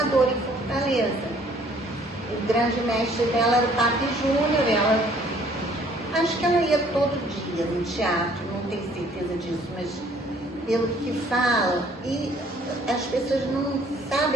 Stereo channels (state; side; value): normal; both; correlation 0.59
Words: em Fortaleza. O grande mestre dela era o Papi Júnior. Acho que ela ia todo dia no teatro, não tenho certeza disso, mas pelo que fala, e as pessoas não